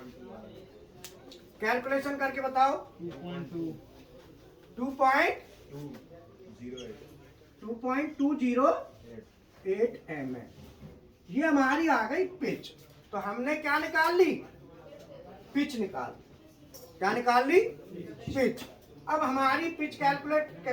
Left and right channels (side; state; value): both; identical; correlation 1.00